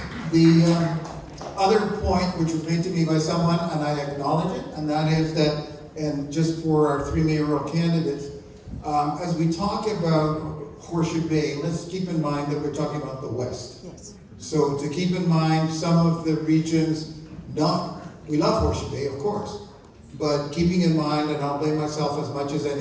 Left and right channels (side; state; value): both; identical; correlation 1.00